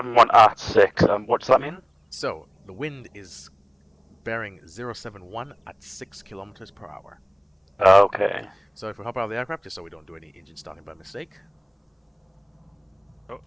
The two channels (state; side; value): identical; both; correlation 1.00